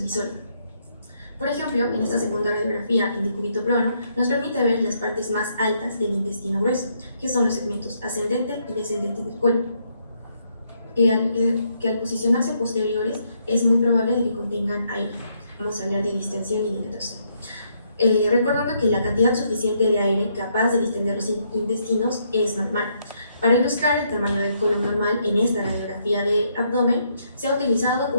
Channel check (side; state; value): both; inverted; correlation -0.74